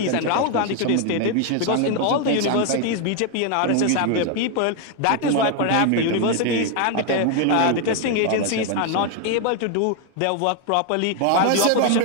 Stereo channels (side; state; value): both; different; correlation 0.01